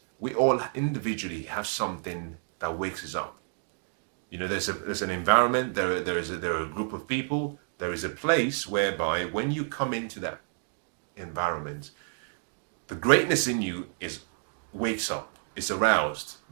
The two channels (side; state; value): left; silent; 58 dB below the other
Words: we all individually have something that wakes us up. You know, there's an environment, there are a group of people, there is a place whereby when you come into that environment, the greatness in you wakes up, is aroused,